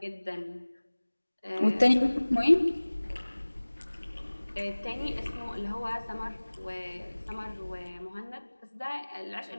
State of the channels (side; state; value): both; inverted; correlation -1.00